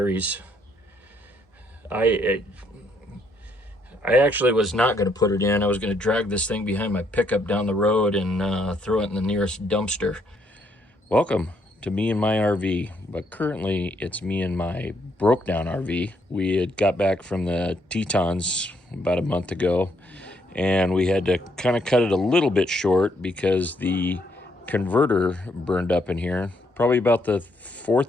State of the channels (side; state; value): both; normal; correlation 0.72